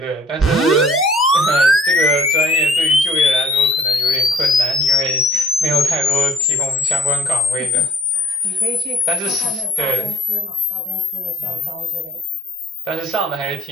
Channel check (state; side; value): normal; both; correlation 0.57